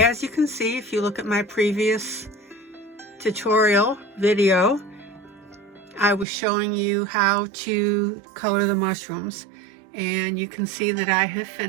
you can see, if you look at my previous tutorial video, I was showing you how to color the mushrooms, and you can see that I have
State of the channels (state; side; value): drops out; left; at 6.2 s